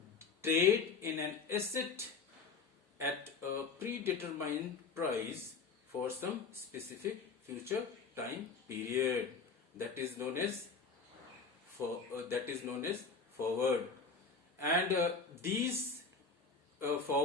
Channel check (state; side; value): quieter; right; 4.7 dB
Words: trade in an asset at a predetermined price for some specific future time period. That is known as forward. And these